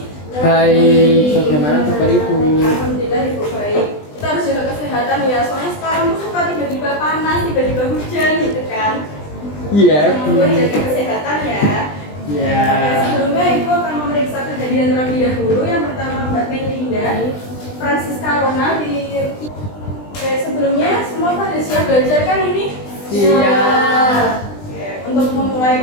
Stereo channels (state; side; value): late; right; 20 ms